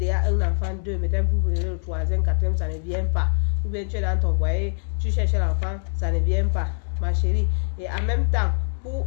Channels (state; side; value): silent; right; digital silence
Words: un enfant, 2, maintenant vous venez le 3e, 4e, ça ne vient pas. Ou bien tu es dans ton foyer, tu cherches l'enfant, ça ne vient pas, ma chérie. Et en même temps,